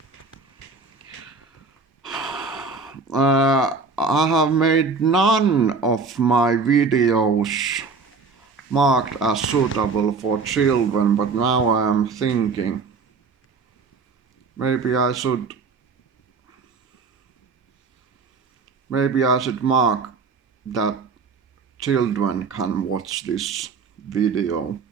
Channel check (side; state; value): left; quieter; 4.6 dB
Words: I have made none of my videos marked as suitable for children, but now I am thinking maybe I should mark that children can watch this video.